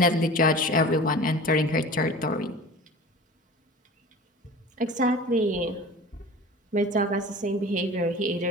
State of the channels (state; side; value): normal; both; correlation 0.39